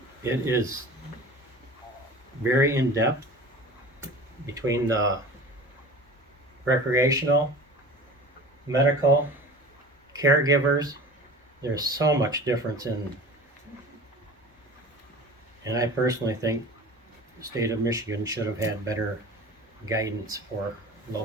is very in-depth between the recreational, medical, caregivers. There's so much difference and I personally think the state of Michigan should have had better guidance for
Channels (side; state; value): both; normal; correlation 0.38